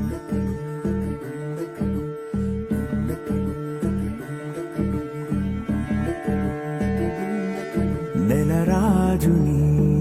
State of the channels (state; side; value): identical; both; correlation 1.00